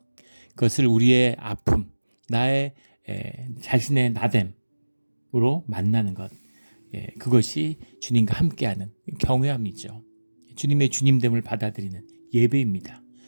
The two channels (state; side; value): inverted; both; correlation -1.00